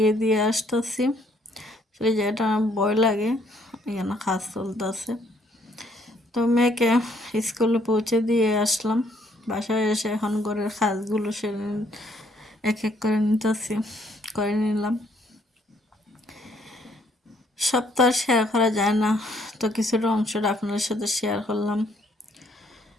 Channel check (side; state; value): both; normal; correlation 0.67